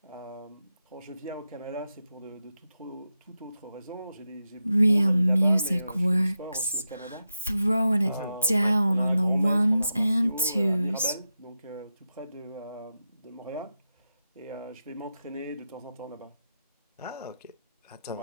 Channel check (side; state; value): both; inverted; correlation -0.89